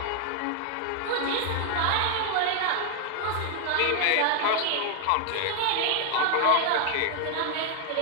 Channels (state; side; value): different; both; correlation 0.00